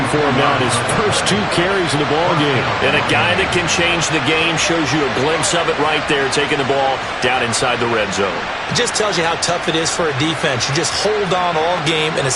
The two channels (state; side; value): identical; both; correlation 1.00